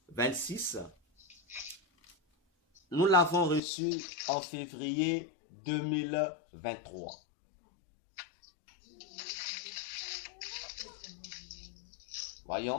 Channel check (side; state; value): right; drops out; at 3.6 s